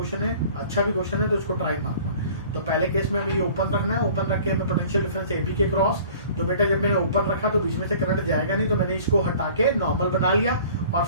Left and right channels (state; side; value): inverted; both; correlation -0.48